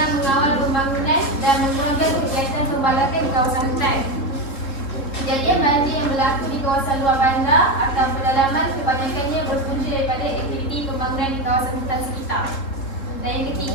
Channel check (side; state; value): right; late; 3.7 ms